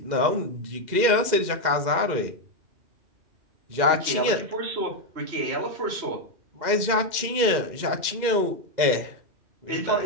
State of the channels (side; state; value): left; late; 2.1 ms